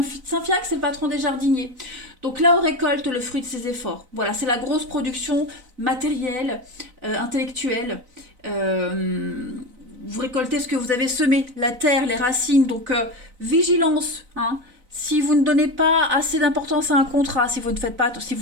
c'est le patron des jardiniers. Donc là, on récolte le fruit de ses efforts. Voilà, c'est la grosse production matérielle, intellectuelle. Vous récoltez ce que vous avez semé, la terre, les racines. Donc, vigilance. Hein. Si vous ne donnez pas assez d'importance à un contrat, si vous ne faites pas, si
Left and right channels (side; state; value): left; late; 4.0 ms